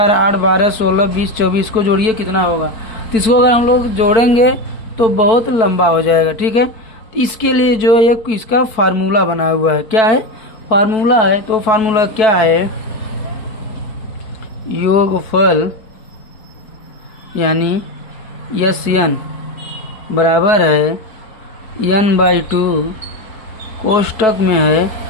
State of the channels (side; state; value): right; late; 4.6 ms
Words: 8, 12, 16, 20, 24 को जोड़िए कितना होगा। तो इसको अगर हम लोग जोड़ेंगे तो बहुत लंबा हो जाएगा, ठीक है। तो इसके लिए जो एक इसका फार्मूला बना हुआ है, क्या है, फार्मूला है। तो फार्मूला क्या है, योगफल यानी SN बराबर है n/2 कोष्टक में है